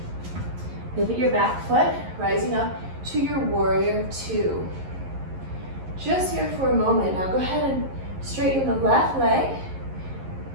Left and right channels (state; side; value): late; left; 11 ms